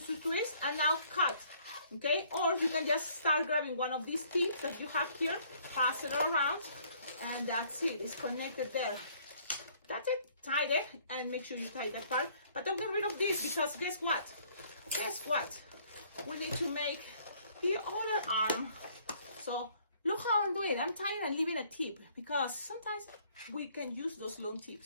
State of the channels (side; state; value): both; inverted; correlation -0.61